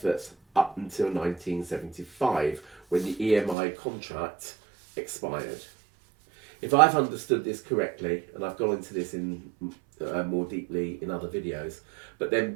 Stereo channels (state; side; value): drops out; left; at 3.6 s